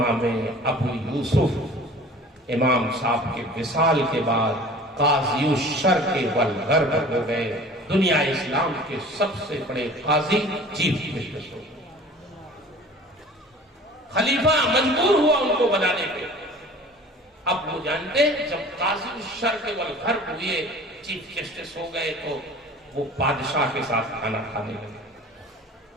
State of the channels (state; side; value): normal; both; correlation 0.44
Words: ابو یوسف امام صاحب کے وصال کے بعد قاضی الشرق والغرب ہو گئے، دنیا اسلام کے سب سے بڑے قاضی چیف جسٹس ہو گئے۔ خلیفہ مجبور ہوا ان کو بنانے پہ۔ اب وہ جانتے ہیں جب قاضی الشرق والغرب ہوئے، چیف جسٹس ہو گئے، تو وہ بادشاہ کے ساتھ کھانا کھانے لگے۔